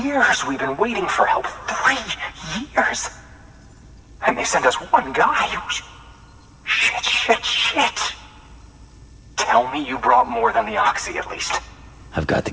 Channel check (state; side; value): identical; both; correlation 1.00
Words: years we've been waiting for help. 3 years! And they sent us one guy. Shit. Tell me you brought more than the Oxy, at least. I've got the